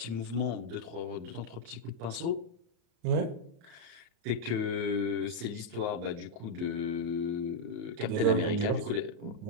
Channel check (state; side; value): late; left; 35 ms